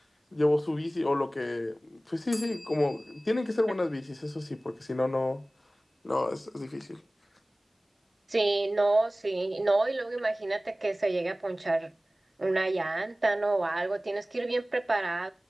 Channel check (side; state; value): both; normal; correlation 0.97